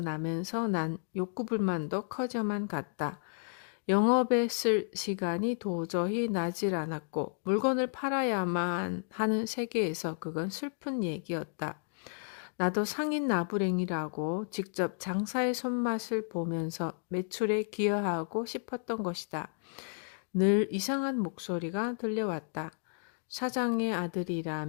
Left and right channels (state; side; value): silent; right; digital silence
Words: 난 욕구불만도 커져만 갔다. 영업에 쓸 시간이 도저히 나질 않았고 물건을 팔아야만 하는 세계에서 그건 슬픈 얘기였다. 나도 상인 나부랭이라고 직접 장사의 손맛을 보면서 매출에 기여하고 싶었던 것이다. 늘 이상한 목소리가 들려왔다. 사장의